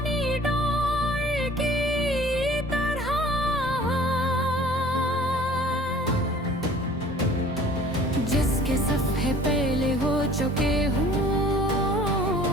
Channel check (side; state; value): both; normal; correlation 0.50